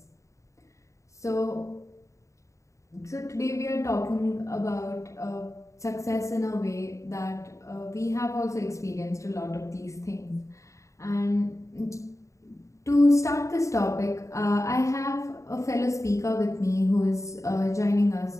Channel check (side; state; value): right; late; 0.15 ms